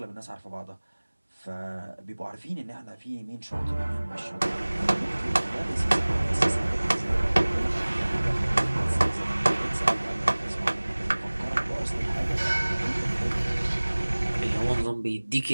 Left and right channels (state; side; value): inverted; both; correlation -1.00